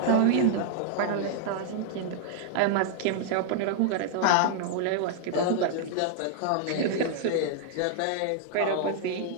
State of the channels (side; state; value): both; different; correlation -0.01